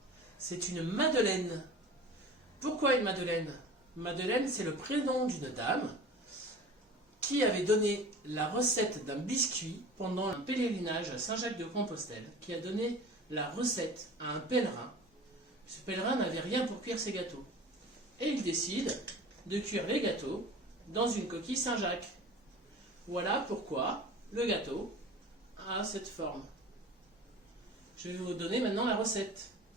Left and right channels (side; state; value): both; normal; correlation 0.39